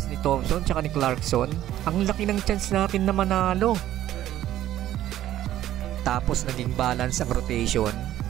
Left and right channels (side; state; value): left; quieter; 13.0 dB